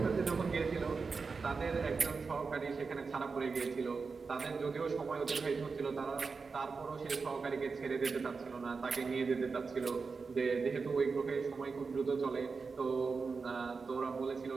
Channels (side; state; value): left; quieter; 4.7 dB